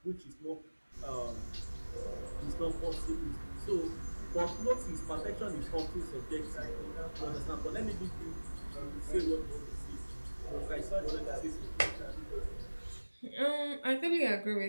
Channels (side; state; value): both; inverted; correlation -1.00